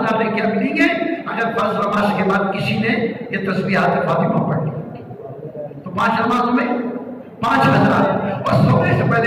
نیکیاں ملیں گے اگر فرض نماز کے بعد کسی نے یہ تسبیحات فاطمہ پڑھ لی تو 5 نمازوں میں 5000. اور سونے سے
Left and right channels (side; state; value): both; identical; correlation 1.00